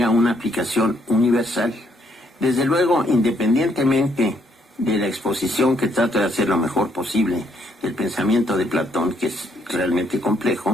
una aplicación universal. Desde luego, independientemente de la exposición que trato de hacer lo mejor posible del pensamiento de Platón, que es realmente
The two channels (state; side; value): normal; both; correlation 0.71